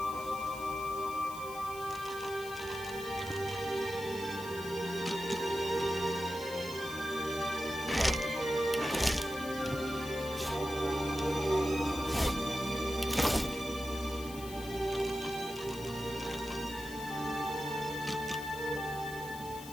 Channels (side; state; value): left; noise; hiss, 15 dB below the sound